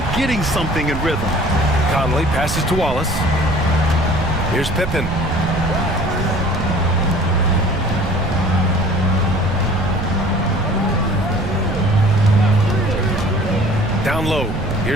getting something in rhythm. Conley passes to Wallace. Here's Pippen. Down low.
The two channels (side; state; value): right; noise; rumble, 6 dB below the sound